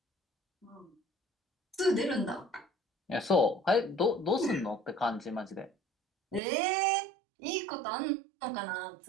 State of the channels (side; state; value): left; drops out; at 6.4 s